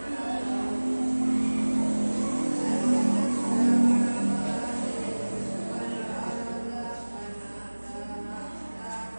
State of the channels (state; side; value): inverted; both; correlation -1.00